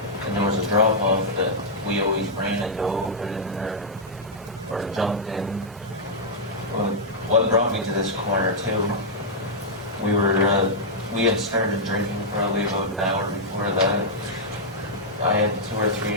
and there was a drop off that we always ran and dove in or jumped in. Well, what brought me to this corner too, we had started drinking probably about an hour before that. I had 2 or 3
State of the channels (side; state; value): both; normal; correlation -0.07